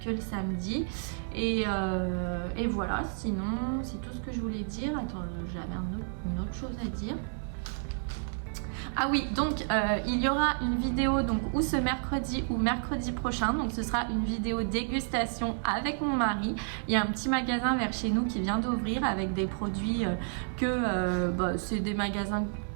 que le samedi. Et voilà, sinon c'est tout ce que je voulais dire. Attends, j'avais une autre chose à dire. Ah oui, donc il y aura une vidéo donc ou ce mercredi ou mercredi prochain. Donc ce sera une vidéo dégustation avec mon mari. Il y a un petit magasin vers chez nous qui vient d'ouvrir avec des produits c'est des magasins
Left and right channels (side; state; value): left; silent; 57 dB below the other